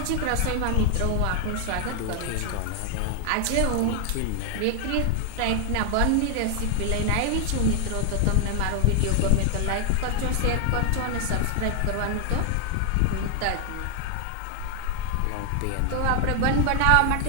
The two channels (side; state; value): both; different; correlation 0.00